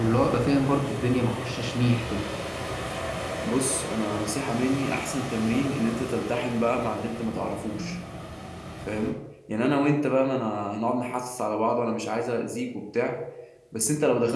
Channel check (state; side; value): identical; both; correlation 1.00